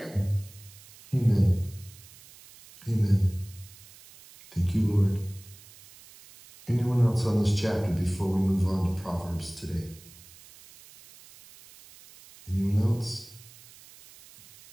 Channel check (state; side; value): noise; right; hiss, 22 dB below the sound